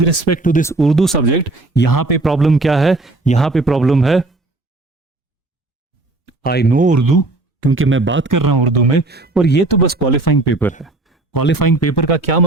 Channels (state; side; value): quieter; left; 3.0 dB